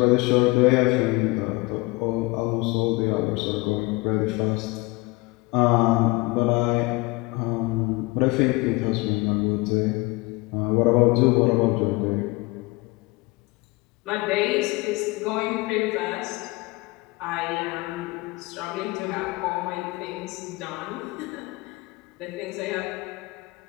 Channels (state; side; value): quieter; right; 23.6 dB